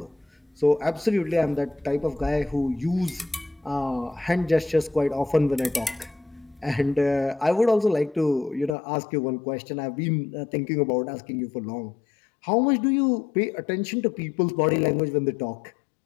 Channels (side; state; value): right; drops out; at 8.8 s